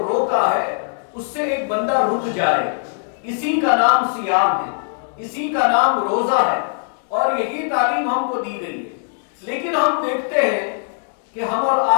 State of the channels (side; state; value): right; silent; digital silence